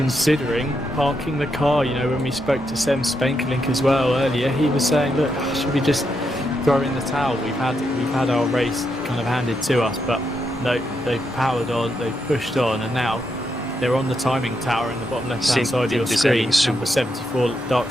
parking the car, you know, when we spoke to Sem Spenkelink as well earlier, he was saying, look, should we just throw in the towel? We've had our race kind of handed to us, but no, they've powered on, they've pushed on, and now they're on the timing tower in the bottom left-hand side of your screen. Number 74 Dark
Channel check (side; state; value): both; normal; correlation 0.82